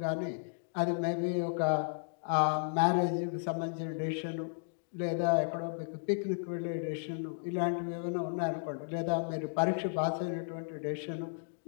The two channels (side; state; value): right; silent; digital silence